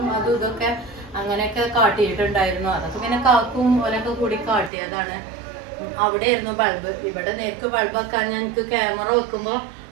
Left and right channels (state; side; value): drops out; left; at 4.7 s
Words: അതും ഇതൊക്കെ അങ്ങനെയൊക്കെ കാട്ടിയിട്ടുണ്ടായിരുന്നു. അതൊക്കെ പിന്നെ കാക്കും ഓലൊക്കെ കൂടി കാട്ടിയതാണ്. അവിടെ ആയിരുന്നു ബൾബ്. ഇവിടെ നേർക്ക് ബൾബ് വെക്കാൻ ഞങ്ങൾക്ക് ക്യാമറ വെക്കുമ്പോ